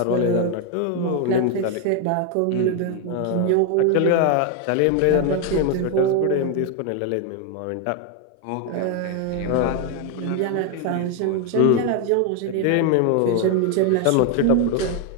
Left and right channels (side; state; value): both; different; correlation 0.01